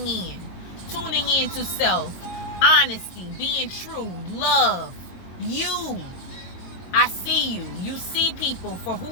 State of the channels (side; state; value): right; late; 22 ms